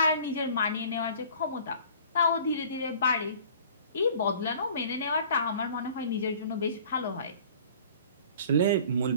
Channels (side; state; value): both; inverted; correlation -0.49